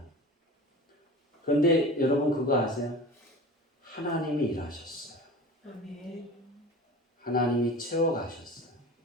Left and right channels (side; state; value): both; normal; correlation 0.36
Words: 그런데 여러분 그거 아세요? 하나님이 일하셨어요. 아멘. 하나님이 채워가셨어요.